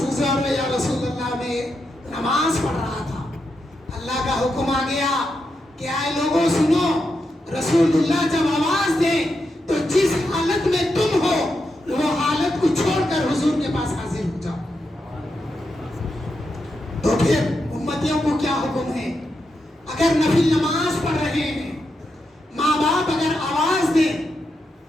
گزار یا رسول اللہ میں نماز پڑھ رہا تھا، اللہ کا حکم آ گیا کہ آئے لوگوں سنو، رسول اللہ جب آواز دیں تو جس حالت میں تم ہو وہ حالت کو چھوڑ کر حضور کے پاس حاضر ہو جاؤ۔ تو پھر امتیوں کو کیا حکم ہے؟ اگر نفل نماز پڑھ رہے ہیں، ماں باپ اگر آواز دیں،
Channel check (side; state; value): both; normal; correlation 0.85